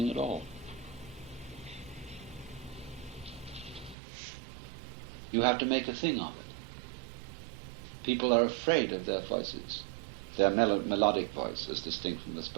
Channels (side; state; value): left; drops out; at 4.0 s